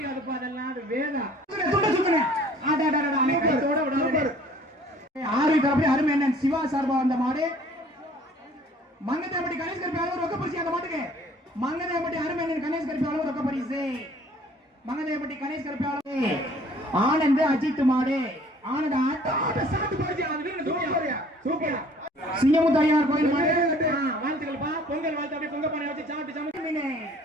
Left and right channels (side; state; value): both; normal; correlation 0.54